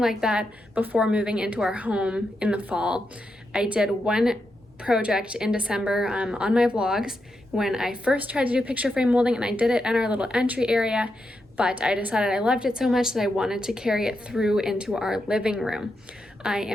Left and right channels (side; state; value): both; normal; correlation 0.85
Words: that before moving into our home in the fall. I did one project in December on my vlogs when I first tried to do picture frame molding, and I did it in our little entry area, but I decided I loved it so much that I wanted to carry it through into our living room. I